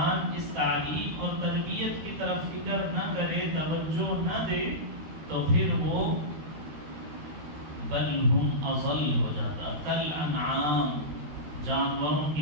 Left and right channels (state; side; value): late; left; 13 ms